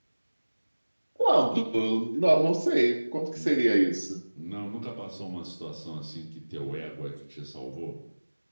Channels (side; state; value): both; inverted; correlation -1.00